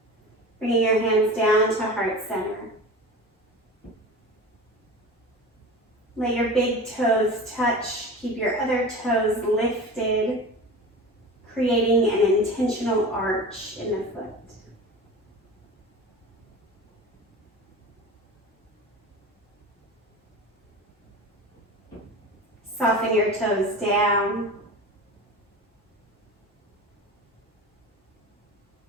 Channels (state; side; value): normal; both; correlation 0.33